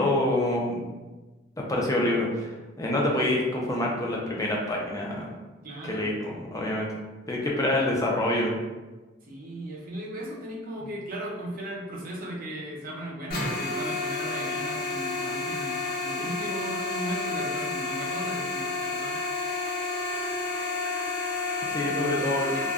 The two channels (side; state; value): both; normal; correlation 0.31